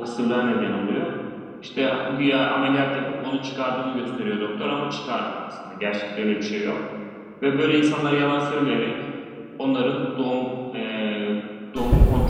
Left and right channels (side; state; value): both; identical; correlation 1.00